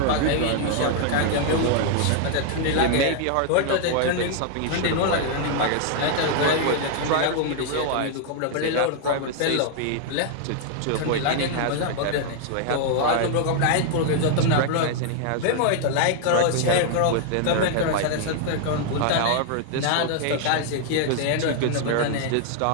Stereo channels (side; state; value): both; different; correlation 0.00